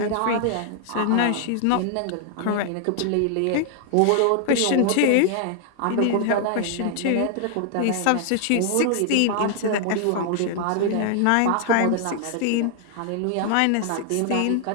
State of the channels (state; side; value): different; both; correlation 0.00